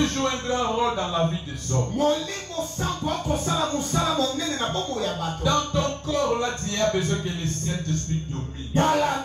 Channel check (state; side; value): identical; both; correlation 1.00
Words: joue un grand rôle dans la vie des hommes. Dans ton corps, là, tu as besoin que le Saint-Esprit domine.